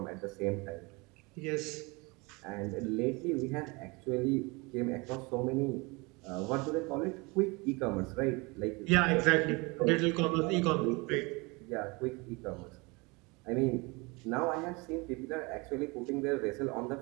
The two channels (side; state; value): left; quieter; 26.7 dB